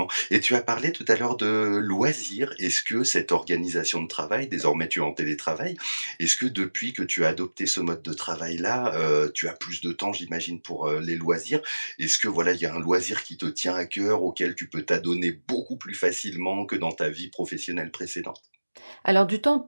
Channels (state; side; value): inverted; both; correlation -1.00